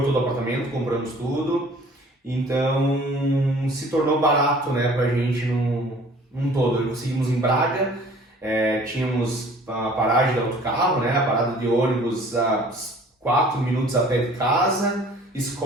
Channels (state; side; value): normal; both; correlation 0.51